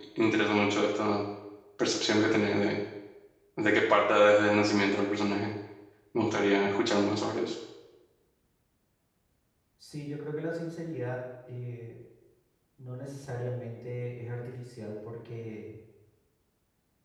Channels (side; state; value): both; identical; correlation 1.00